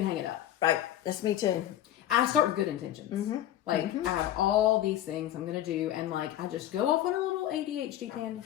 hang it up. Right. That's me too. I start with good intentions. Mm-hmm. Like, I have all these things I'm going to do, and like, I just go off on a little ADHD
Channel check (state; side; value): quieter; right; 12.3 dB